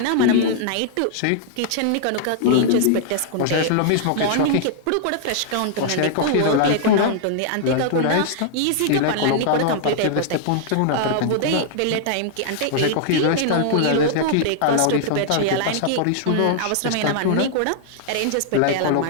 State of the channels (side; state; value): both; different; correlation -0.01